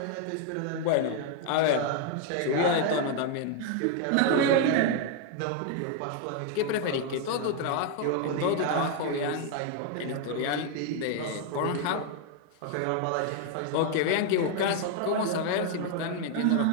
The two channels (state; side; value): different; both; correlation 0.00